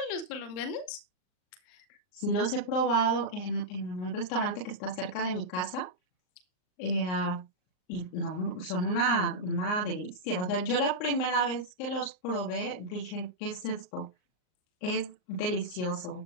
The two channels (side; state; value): right; late; 39 ms